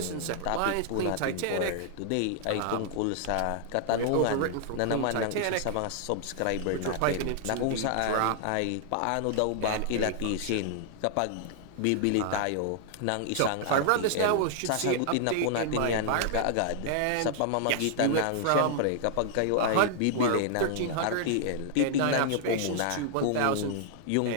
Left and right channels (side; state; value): both; different; correlation -0.01